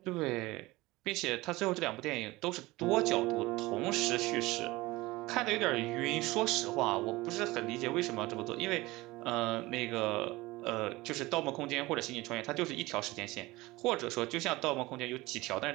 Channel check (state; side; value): quieter; left; 20.3 dB